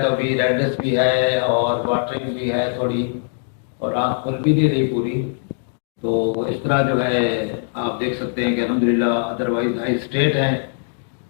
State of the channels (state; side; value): silent; right; digital silence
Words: تو ابھی ریڈنس بھی ہے اور واٹرنگ بھی ہے تھوڑی, اور آنکھ کھل بھی نہیں رہی پوری. تو اس طرح جو ہے آپ دیکھ سکتے ہیں کہ الحمدللہ ادروائز ہائی اسٹیٹ ہیں